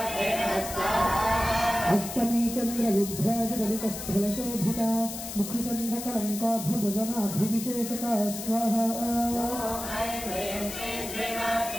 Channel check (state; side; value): noise; left; hiss, 8 dB below the sound